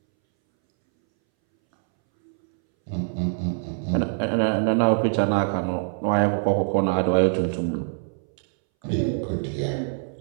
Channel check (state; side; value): silent; left; 62 dB below the other